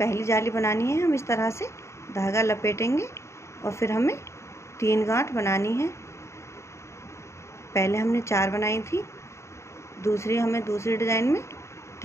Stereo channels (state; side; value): late; right; 0.14 ms